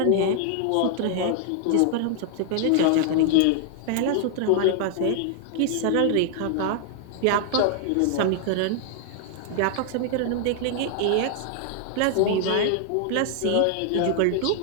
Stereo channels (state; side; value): different; both; correlation 0.00